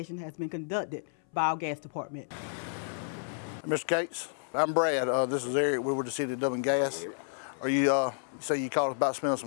has been conducted by our gas department. Mr. Cates, I'm Brad. This is Eric. We were the City of Dublin Gas. Are you say you called us about smelling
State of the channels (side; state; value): right; silent; 57 dB below the other